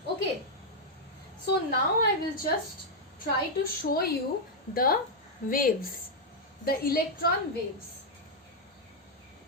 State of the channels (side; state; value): both; normal; correlation -0.03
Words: Okay. So now I will just try to show you the waves, the electron waves.